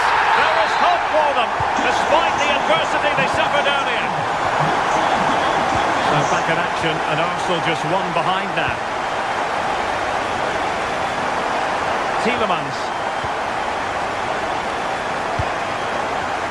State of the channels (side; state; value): both; identical; correlation 1.00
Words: There is hope for them, despite the adversity they suffered earlier. So back in action, and Arsenal just one behind now. Tielemans.